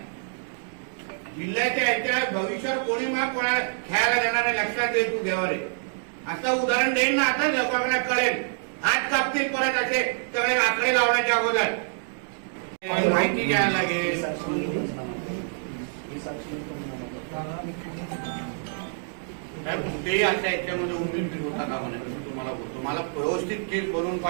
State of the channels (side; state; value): left; silent; digital silence